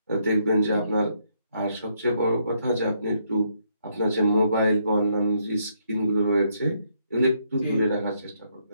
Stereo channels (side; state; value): both; inverted; correlation -0.74